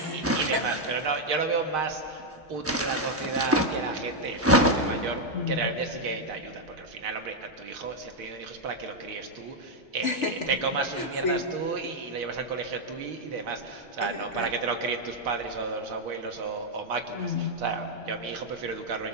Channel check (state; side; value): normal; both; correlation 0.01